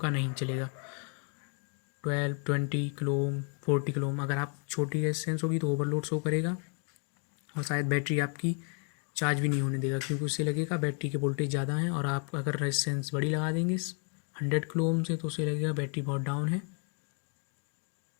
नहीं चलेगा। 12, 20 किलो ओम, 40 किलो ओम। अगर आप छोटी रेजिस्टेंस होगी तो ओवरलोड शो करेगा, और शायद बैटरी आपकी चार्ज भी नहीं होने देगा, क्योंकि उससे लगेगा बैटरी के वोल्टेज ज़्यादा है। और आप अगर रेजिस्टेंस बड़ी लगा देंगे 100 किलो ओम से, तो उससे लगेगा बैटरी बहुत डाउन है,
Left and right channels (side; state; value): right; quieter; 39.9 dB